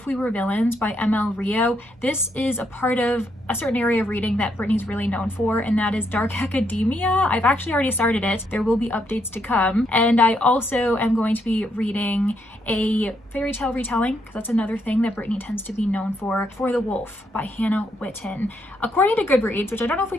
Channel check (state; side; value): normal; both; correlation 0.76